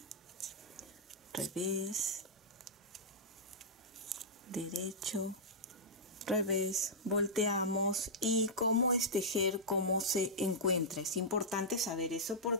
Revés, derecho, revés, volteamos. Y cómo es tejer, cómo se encuentra. Es importante saber eso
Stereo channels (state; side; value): normal; both; correlation -0.12